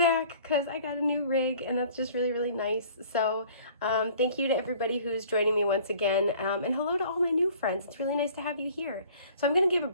because I got a new rig, and that's just really, really nice. So thank you to everybody who's joining me once again, and hello to all my new friends. It's really nice to have you here. So I'm going to give a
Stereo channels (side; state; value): both; inverted; correlation -0.52